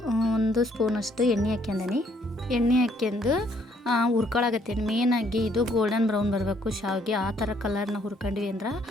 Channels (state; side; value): normal; both; correlation 0.66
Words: 1 ಸ್ಪೂನಷ್ಟು ಎಣ್ಣೆ ಹಾಕ್ಯಂದೀನಿ. ಎಣ್ಣೆ ಹಾಕ್ಯಂದು ಹುರ್ಕೊಳಕತ್ತೀನಿ. ಮೇನಾಗಿ ಇದು ಗೋಲ್ಡನ್ ಬ್ರೌನ್ ಬರಬೇಕು ಶಾವಿಗೆ. ಆ ಥರ ಕಲರ್ನ ಹುರ್ಕೊಂಡ್ವಿ ಅಂದ್ರೆ